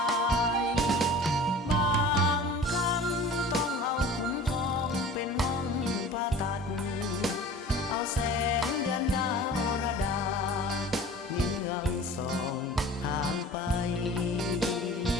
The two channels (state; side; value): normal; both; correlation 0.42